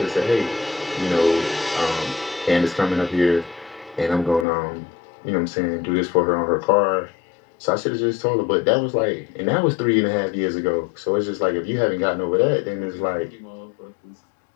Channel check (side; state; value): right; drops out; at 4.5 s